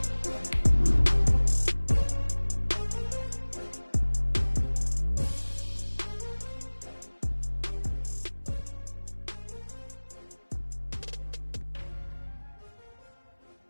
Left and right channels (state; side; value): inverted; both; correlation -1.00